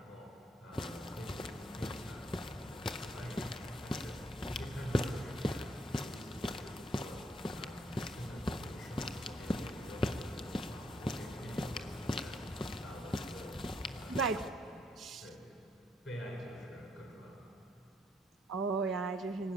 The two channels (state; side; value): normal; both; correlation 0.73